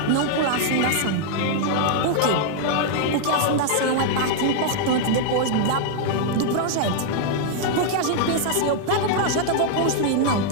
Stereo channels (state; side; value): different; both; correlation 0.00